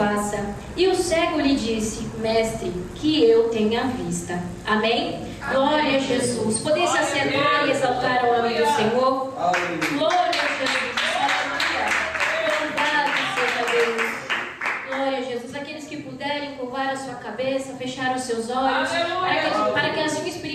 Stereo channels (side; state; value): both; identical; correlation 1.00